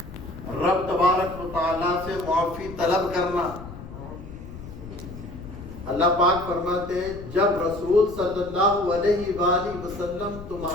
رب تبارک و تعالیٰ سے معافی طلب کرنا. اللہ پاک فرماتے ہیں جب رسول صلی اللہ علیہ وآلہ وسلم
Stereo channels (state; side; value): noise; left; rumble, 13 dB below the sound